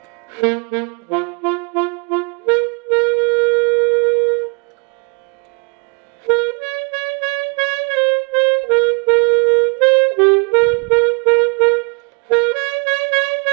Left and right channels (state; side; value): quieter; left; 36.0 dB